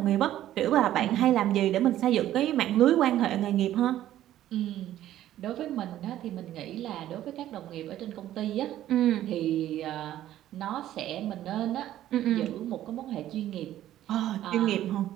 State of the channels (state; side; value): quieter; left; 12.9 dB